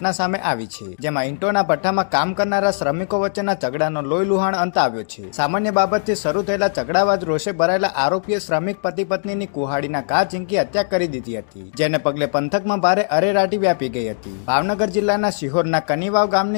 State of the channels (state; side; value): silent; right; digital silence